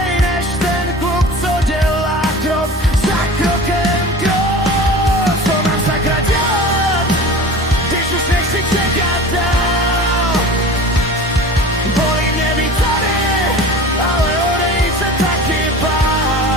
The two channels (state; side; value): normal; both; correlation 0.37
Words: než ten kluk, co dělá krok za krokem krok. Co mám sakra dělat, když už nechci čekat dál?